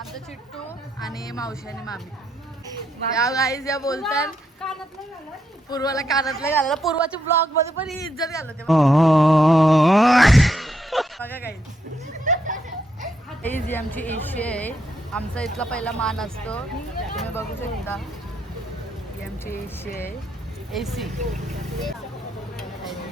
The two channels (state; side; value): normal; both; correlation 0.78